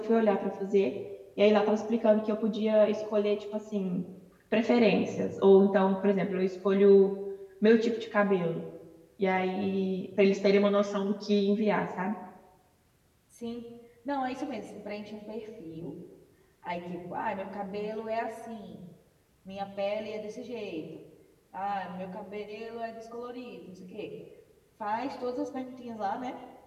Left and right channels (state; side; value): identical; both; correlation 1.00